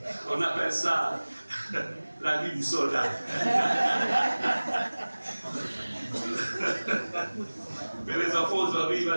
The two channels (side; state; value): both; inverted; correlation -1.00